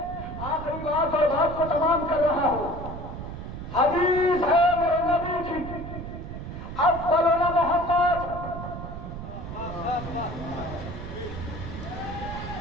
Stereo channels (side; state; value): right; noise; rumble, 8 dB below the sound